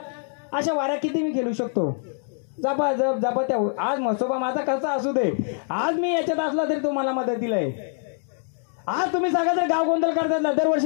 अशा वाऱ्या किती मी खेळू शकतो? जपा त्या. आज मसोबा माझा कसा असू दे, आज मी याच्यात असला तरी तुम्हाला मदतीला आहे. आज तुम्ही सांगा जर गाव गोंधळ करतात,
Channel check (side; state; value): right; silent; 62 dB below the other